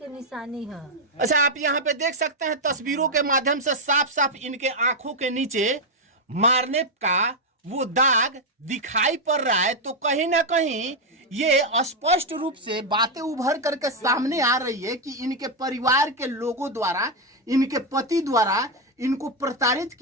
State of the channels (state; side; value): normal; both; correlation 0.02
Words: निशानी है। अच्छा आप यहाँ पे देख सकते हैं तस्वीरों के माध्यम से साफ साफ इनके आंखों के नीचे मारने का वो दाग दिखाई पड़ रहा है, तो कहीं ना कहीं ये स्पष्ट रूप से बातें उभर करके सामने आ रही है कि इनके परिवार के लोगों द्वारा, इनके पति द्वारा इनको प्रताड़ित